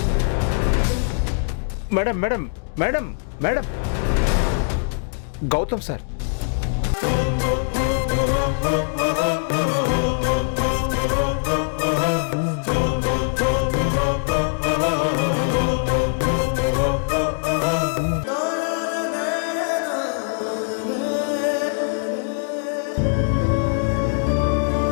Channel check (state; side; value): silent; right; digital silence